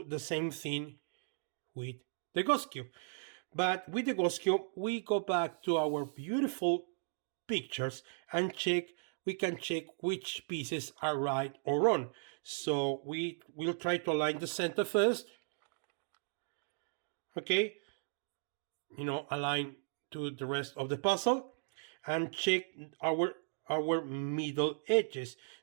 the same thing with the ghost cube, but with the ghost cube we go back to our beautiful pictures and we can check which pieces are right or wrong. So we will try to align the center first. Okay, align to the rest of the puzzle and check our middle edges.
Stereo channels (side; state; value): left; silent; digital silence